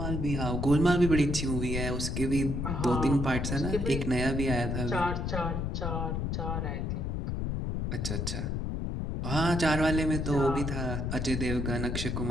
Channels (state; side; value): noise; left; rumble, 1 dB below the sound